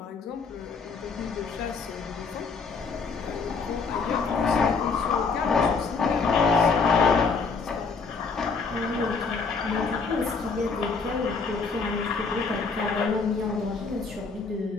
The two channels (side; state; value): right; quieter; 4.8 dB